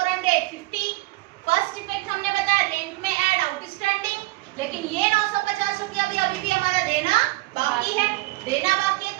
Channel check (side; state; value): left; quieter; 21.3 dB